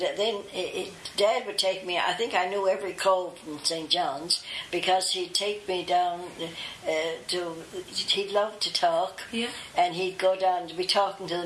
Dad would take me. I think I knew every cove in St. John's because he'd take me down he'd love to talk. Yeah. And he'd go down to be talking to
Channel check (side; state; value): both; identical; correlation 1.00